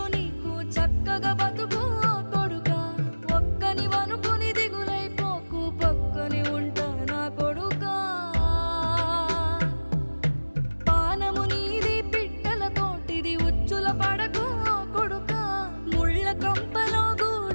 నీకు చక్కగా బతుకు కొడుకా. ఒక్కని వనుకుని దిగులైపోకు, పక్కని ఉంటా నా కొడుకా. పానము నీది పిట్టల తోటిది, ఉచ్చుల పడకు కొడుకా. ముళ్ళ కంపలో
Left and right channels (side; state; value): both; inverted; correlation -1.00